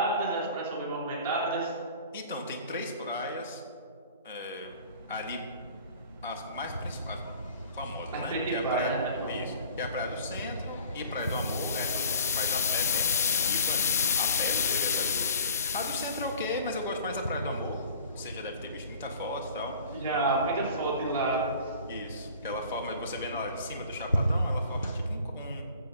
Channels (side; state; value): both; inverted; correlation -0.45